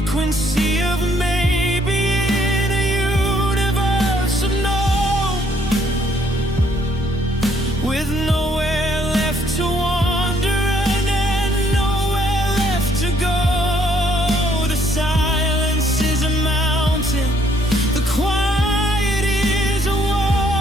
of maybe in a universe of no, with nowhere left to wander and nowhere left to go. The silence is a mountain, the quiet is a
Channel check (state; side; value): normal; both; correlation 0.67